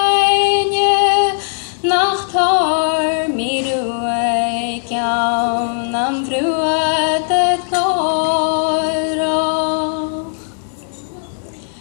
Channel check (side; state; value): right; silent; 68 dB below the other